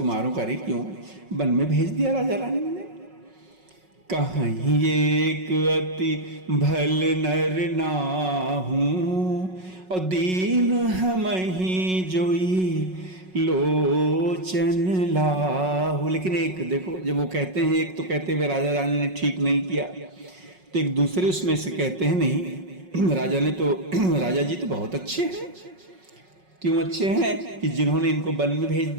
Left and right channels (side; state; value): left; late; 5.4 ms